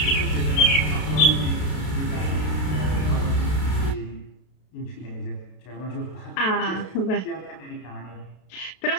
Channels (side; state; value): right; late; 32 ms